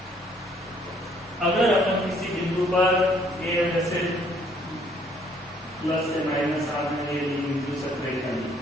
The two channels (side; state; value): both; normal; correlation 0.63